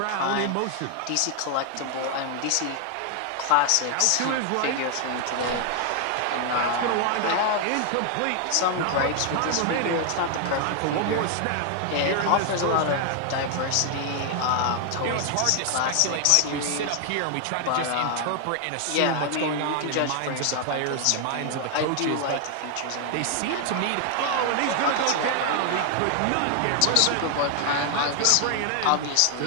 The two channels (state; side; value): different; both; correlation 0.00